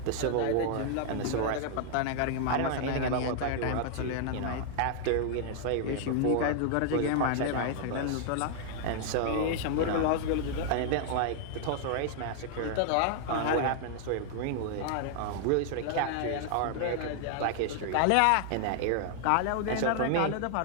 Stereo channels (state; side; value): different; both; correlation 0.00